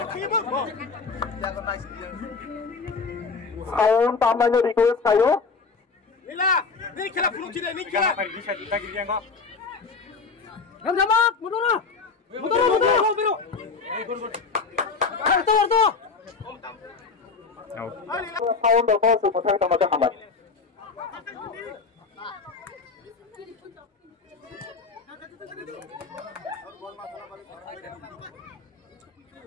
Sound tamanya request kayo. Nila, ni kira peluk tidak ni kira. bisa kita gini yang kok. Gamjabak, mundur. Biru. Warto. Out. Sound the ball supaya kita macam hambat.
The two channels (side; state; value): right; quieter; 4.7 dB